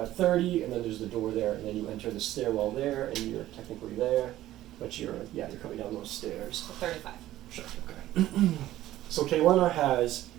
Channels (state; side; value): quieter; left; 14.4 dB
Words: 30, and then there's the door there, and then you enter the stairwell there, and you're technically there, but you're coming down those stairs. So 35. Sure, okay. So Kaylana has